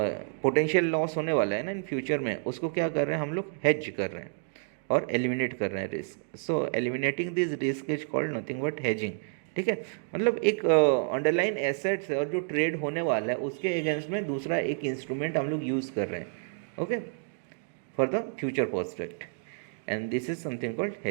लॉस होने वाला है ना इन फ्यूचर में, उसको क्या कर रहे हैं हम लोग, हेज कर रहे हैं और एलिमिनेट कर रहे हैं risk. So eliminating this risk is called nothing but hedging. ठीक है, मतलब एक अंडरलाइन एसेट्स है और जो ट्रेड होने वाला है उसके अगेंस्ट में दूसरा एक इंस्ट्रूमेंट हम लोग यूज़ कर रहे हैं, okay, for the future prospect, and this is something called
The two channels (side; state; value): left; silent; digital silence